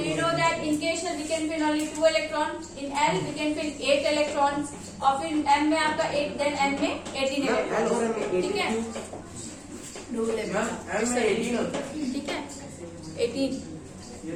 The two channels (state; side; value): identical; both; correlation 1.00